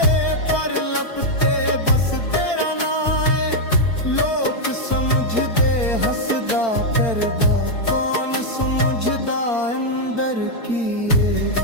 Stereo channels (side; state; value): right; late; 4.4 ms